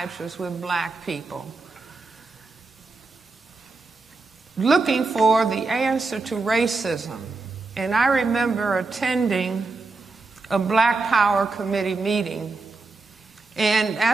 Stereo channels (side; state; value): left; quieter; 3.8 dB